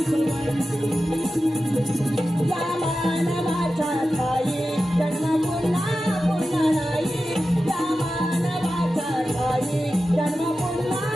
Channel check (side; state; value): both; normal; correlation 0.93